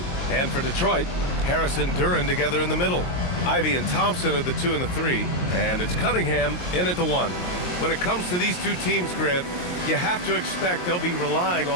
And for Detroit, Harris and Duren together in the middle. Ivy and Thompson are the 2 and the 3, and it's Cunningham in at the 1. When it comes to these two teams, Grant, you have to expect they'll be relying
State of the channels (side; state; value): right; late; 22 ms